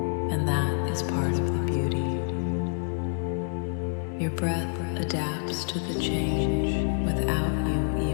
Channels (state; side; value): silent; right; digital silence